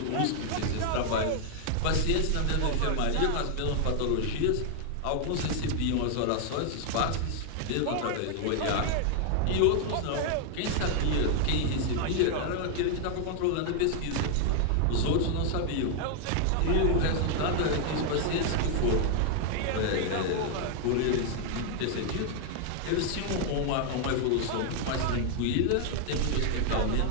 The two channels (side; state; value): both; different; correlation 0.00